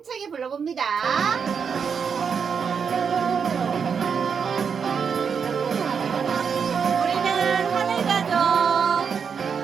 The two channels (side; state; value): left; quieter; 6.5 dB